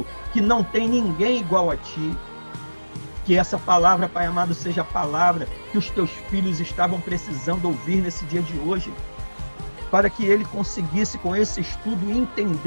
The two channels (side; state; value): both; inverted; correlation -1.00